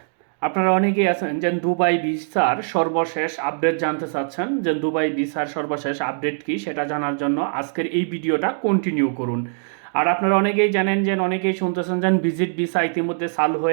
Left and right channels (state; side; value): silent; left; digital silence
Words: আপনারা অনেকেই আছেন যে দুবাই ভিসার সর্বশেষ আপডেট জানতে চাচ্ছেন। যে দুবাই ভিসার সর্বশেষ আপডেট কি সেটা জানার জন্য আজকের এই ভিডিওটা কন্টিনিউ করুন। আর আপনারা অনেকেই জানেন যে অনেকেই শুনতেছেন যে ভিজিট ভিসা ইতিমধ্যে চালু